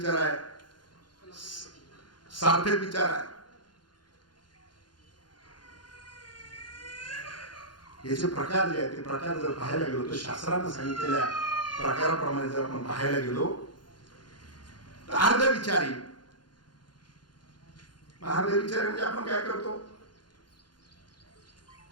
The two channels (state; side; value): late; right; 0.71 ms